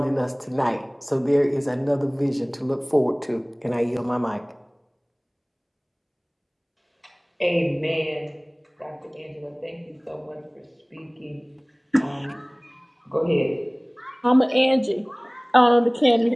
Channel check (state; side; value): identical; both; correlation 1.00